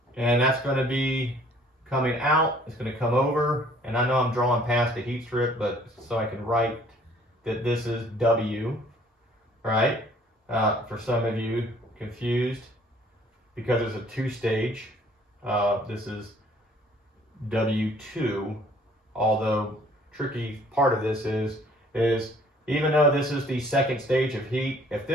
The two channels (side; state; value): both; normal; correlation 0.57